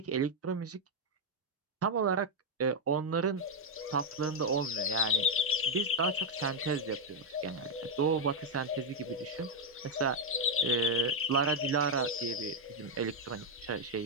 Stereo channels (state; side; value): normal; both; correlation 0.00